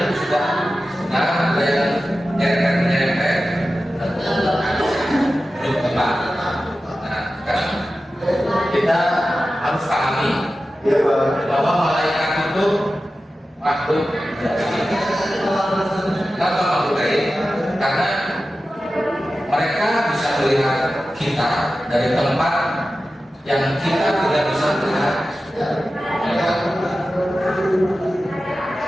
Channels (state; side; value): normal; both; correlation 0.94